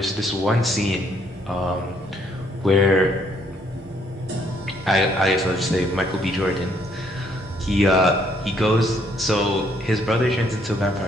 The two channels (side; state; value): both; normal; correlation 0.68